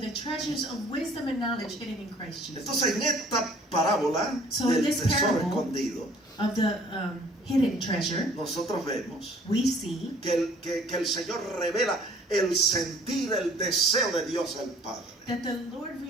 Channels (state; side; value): normal; both; correlation 0.55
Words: treasures of wisdom and knowledge hidden in Christ Jesus. Entonces en esta parábola So in del this tesoro parable, escondido, Of the hidden treasure, nosotros vemos we see que el Señor revela el sentir, el deseo de Dios el Padre. that the Lord